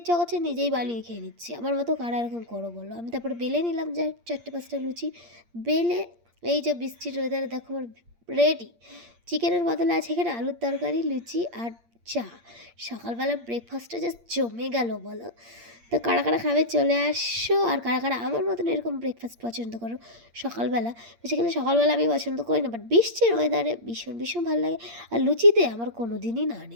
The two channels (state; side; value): late; left; 8.6 ms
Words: করছে, নিজেই বানিয়ে খেয়ে নিচ্ছি। আমার মতো কারা এরকম করো বলো? আমি তারপরে বেলে নিলাম যা 4-5টা লুচি বেলে। এই যে বৃষ্টির ওয়েদারে দেখো আমার রেডি। চিকেনের বদলে আছে এখানে আলুর তরকারি, লুচি আর চা। সকালবেলা ব্রেকফাস্টটা জাস্ট জমে গেল বলো। তো কারা কারা খাবে চলে আসো, আর কারা কারা আমার মতন এরকম ব্রেকফাস্ট পছন্দ করো সকালবেলা। বেসিক্যালি সকালবেলা আমি পছন্দ করি না, বাট বৃষ্টির ওয়েদারে ভীষণ ভীষণ ভালো লাগে। আর লুচিতে আমার কোনো দিনই না